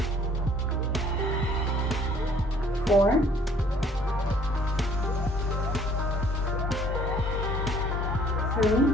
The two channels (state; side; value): normal; both; correlation 0.58